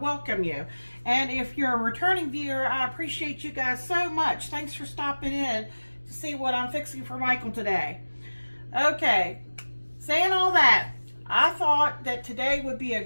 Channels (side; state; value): both; inverted; correlation -1.00